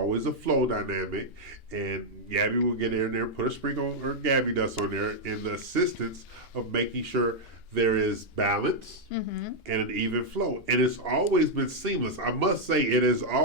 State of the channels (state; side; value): normal; both; correlation -0.02